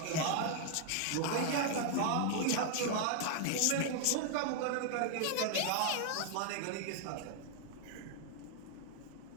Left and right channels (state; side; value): different; both; correlation 0.00